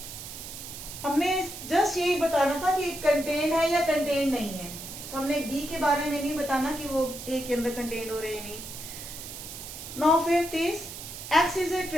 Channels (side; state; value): right; noise; hiss, 10 dB below the sound